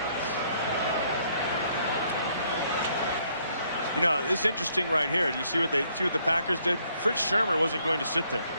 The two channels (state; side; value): inverted; both; correlation -0.68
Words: You know, it's interesting right here. Do you see what the Packers did? Fritz Shermer wasn't going to sit there.